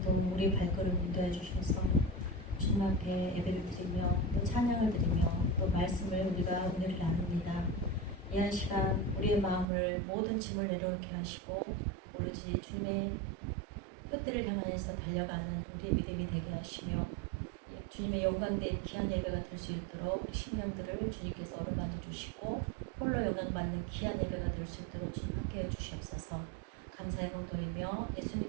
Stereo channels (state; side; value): drops out; left; at 9.7 s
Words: 동안 우리 발걸음 인도해 주셔서 주님 앞에 예배를 드리며 또 찬양을 드리며 또 말씀을 우리가 은혜를 나눕니다. 이 한 시간 우리의 마음을 모든 짐을 내려놓게 하시고 오로지 주님의 뜻들을 향하여서 달려가는 우리의 믿음이 되게 하시며 주님의 영광된 귀한 예배가 될 수 있도록 우리 심령들을 주님께서 어루만져 주시고 홀로 영광받는 귀한 예배가 될 수 있도록 주님 함께해 주시옵소서. 감사의 공 돌리며